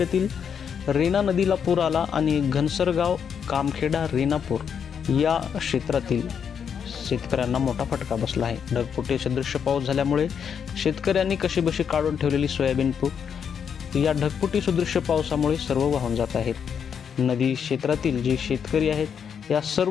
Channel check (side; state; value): right; quieter; 7.4 dB